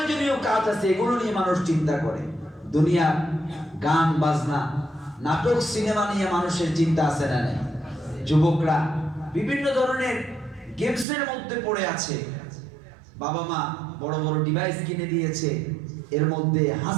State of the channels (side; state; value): left; drops out; at 11.1 s